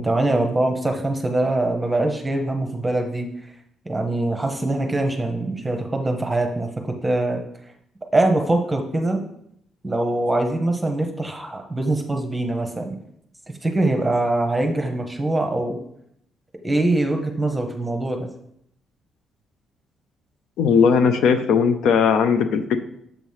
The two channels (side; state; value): both; normal; correlation 0.80